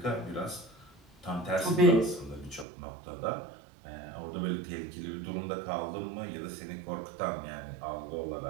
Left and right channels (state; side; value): drops out; left; at 2.7 s